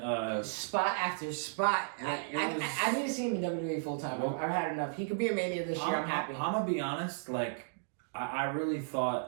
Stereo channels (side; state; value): left; silent; digital silence